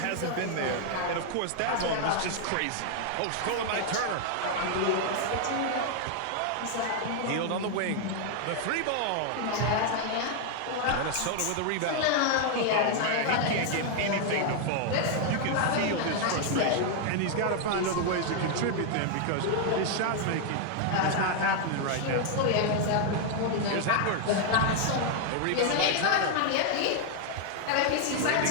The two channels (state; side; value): different; both; correlation 0.00